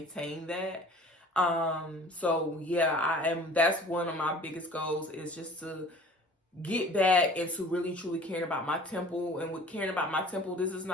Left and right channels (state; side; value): normal; both; correlation 0.47